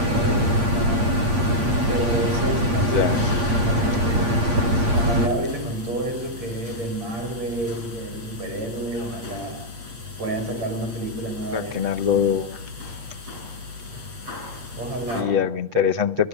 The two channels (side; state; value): left; late; 8.2 ms